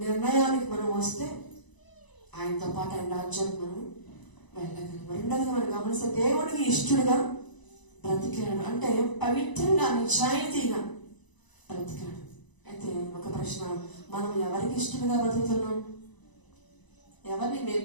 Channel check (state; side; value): late; right; 1.0 ms